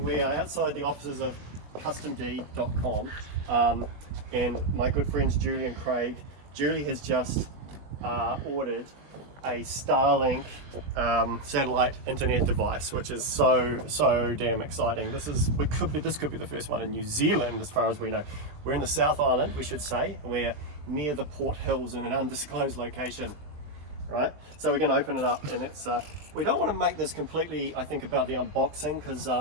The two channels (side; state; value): left; late; 20 ms